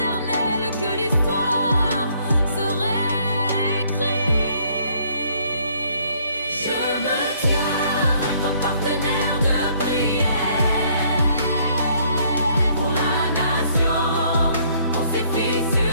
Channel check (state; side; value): inverted; both; correlation -0.65